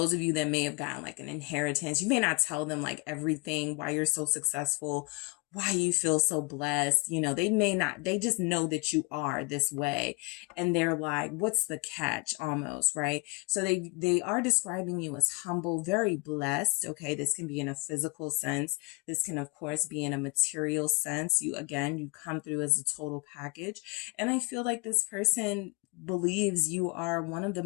of you that may have gotten like an inheritance. You may not tell them like everything, why you're so successful, why you feel so blessed. You know, they may not, they just know that you are this way. And they're like, what's the catch almost, right? So they are describing you as humble, very blessed. Okay. This can be in a physical sense. This can, of course, be in a material sense. You come through as a total package. And I feel like this person believes you are one of the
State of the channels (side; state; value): right; quieter; 28.1 dB